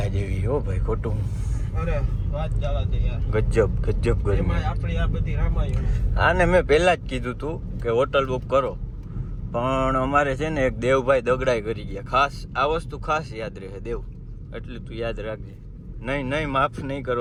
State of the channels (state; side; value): identical; both; correlation 1.00